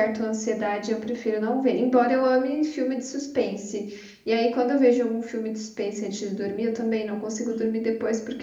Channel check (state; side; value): identical; both; correlation 1.00